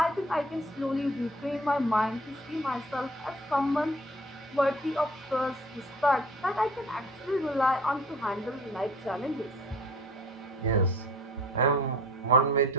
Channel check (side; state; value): both; normal; correlation 0.48